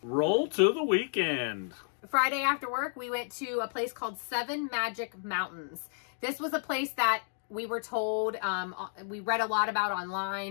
Roll to the weekend. Friday after work, we went to a place called Seven Magic Mountains. This was a place that we were told, we read a lot about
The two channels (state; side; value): silent; right; digital silence